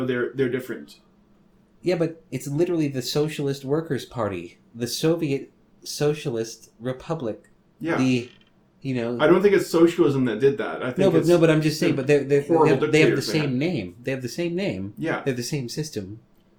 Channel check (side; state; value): both; identical; correlation 1.00